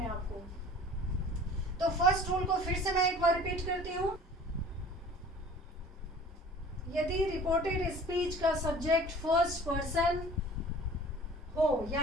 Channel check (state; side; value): normal; both; correlation 0.45